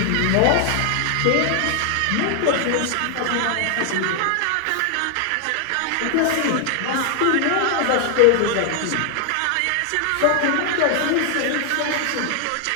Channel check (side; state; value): both; different; correlation 0.00